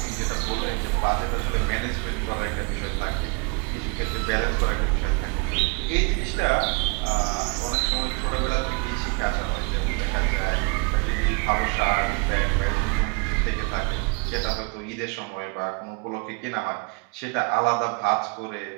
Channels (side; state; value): left; quieter; 31.8 dB